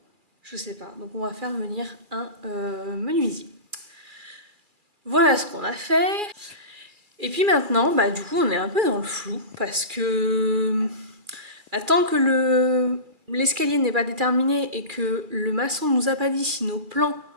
Je sais pas. Donc on va faire venir un menuisier. Voilà ce qu'on a fait. Et puis maintenant, du coup, on est un peu dans le flou parce que tant que l'escalier n'est pas déterminé et que le maçon nous a pas dit si nos plans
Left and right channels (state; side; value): late; left; 2.4 ms